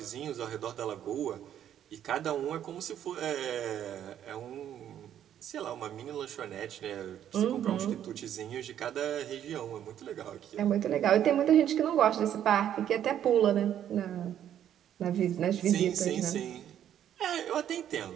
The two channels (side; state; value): left; quieter; 10.4 dB